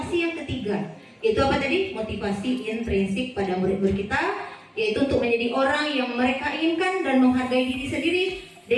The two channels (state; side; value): identical; both; correlation 1.00